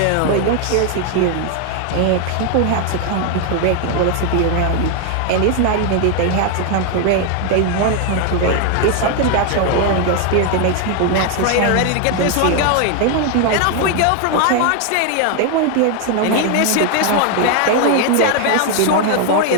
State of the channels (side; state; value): both; different; correlation 0.00